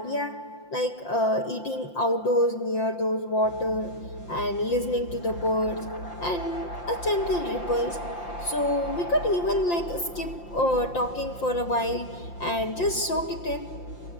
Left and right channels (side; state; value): right; late; 5.8 ms